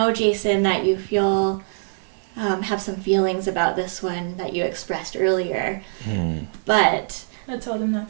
Jason, that you feel have some feelings about this one that you expressed earlier. But I told him not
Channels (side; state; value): left; silent; digital silence